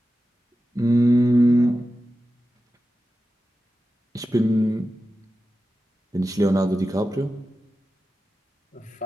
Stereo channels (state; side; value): normal; both; correlation 0.93